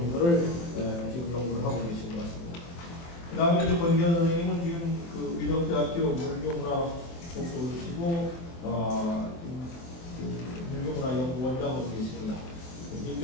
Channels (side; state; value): right; late; 23 ms